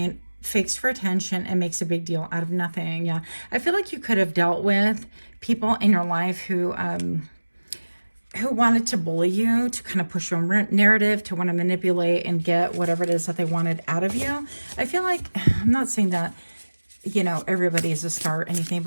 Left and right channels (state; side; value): inverted; both; correlation -1.00